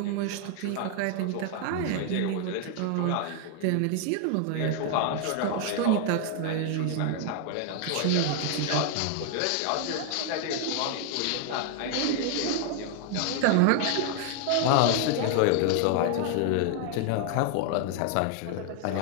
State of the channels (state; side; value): different; both; correlation 0.00